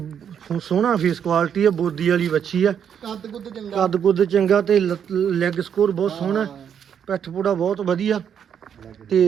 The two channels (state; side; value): quieter; left; 8.3 dB